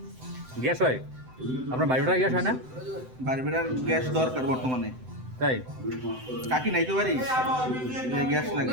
গ্যাস হয়? আপনার বাড়িটার গ্যাস হয় না? বারবেটার গ্যাস দরকার বর্তমানে, তাই কাকি নাই তো বাড়ি, গ্যাস লাগে,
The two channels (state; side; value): late; left; 7.8 ms